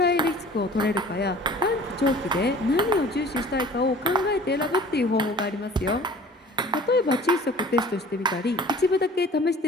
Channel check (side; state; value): both; normal; correlation 0.46